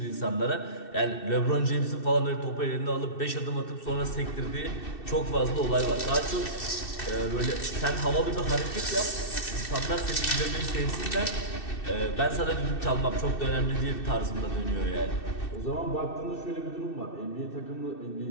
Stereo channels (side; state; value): right; late; 2.6 ms